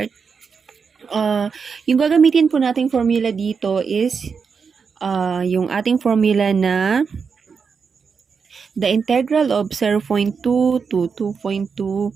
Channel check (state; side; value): quieter; left; 5.7 dB